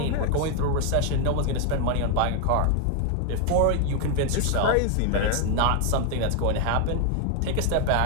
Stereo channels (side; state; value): both; different; correlation 0.00